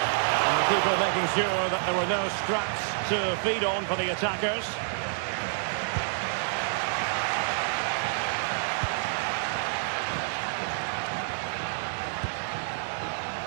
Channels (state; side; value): silent; left; digital silence